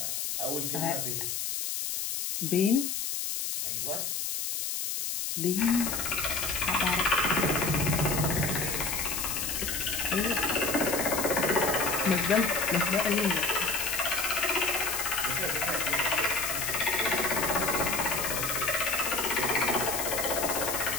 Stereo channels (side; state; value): left; noise; hiss, 2 dB below the sound